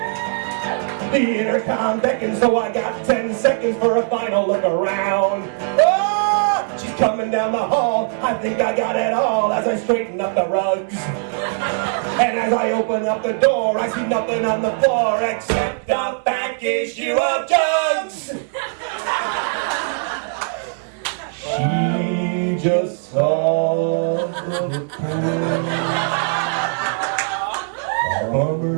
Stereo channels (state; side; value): silent; left; digital silence